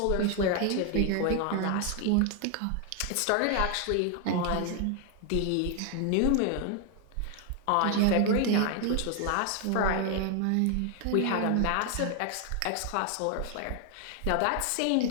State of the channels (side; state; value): both; different; correlation 0.00